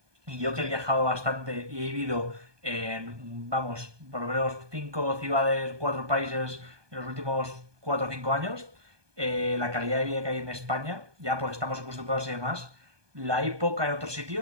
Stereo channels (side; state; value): left; late; 1.2 ms